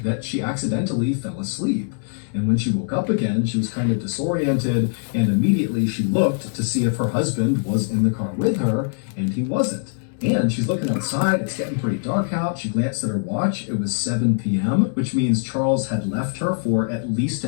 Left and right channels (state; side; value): silent; right; 64 dB below the other